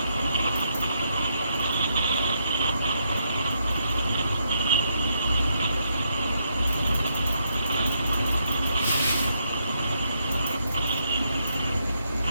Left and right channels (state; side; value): inverted; both; correlation -0.77